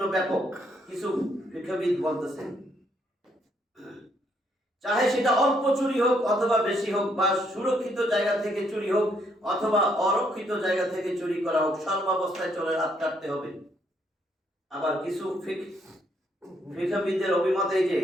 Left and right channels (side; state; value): both; normal; correlation 0.72